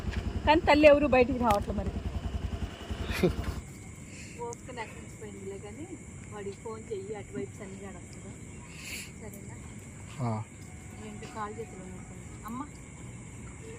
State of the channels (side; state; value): both; identical; correlation 1.00